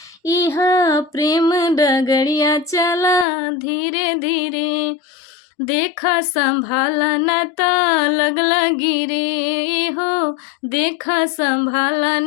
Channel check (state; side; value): drops out; right; at 3.2 s